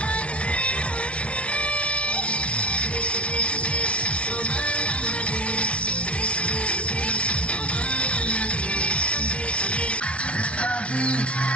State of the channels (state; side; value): late; right; 0.061 ms